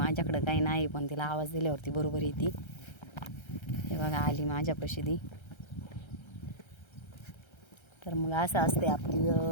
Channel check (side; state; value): right; late; 1.3 ms